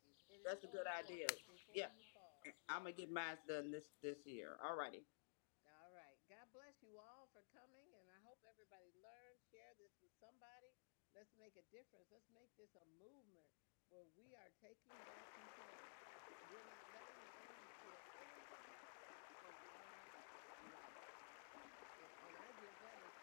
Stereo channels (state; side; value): silent; right; digital silence